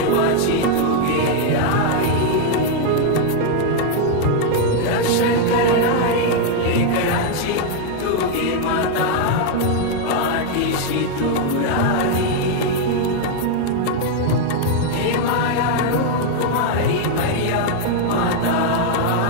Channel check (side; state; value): both; different; correlation 0.00